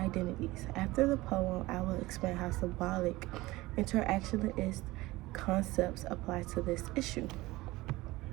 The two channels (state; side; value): quieter; left; 19.5 dB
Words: After the poem, I will explain how symbolic interactionist concepts apply to this issue.